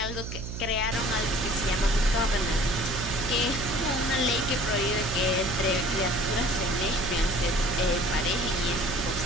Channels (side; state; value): right; noise; hum, 7 dB below the sound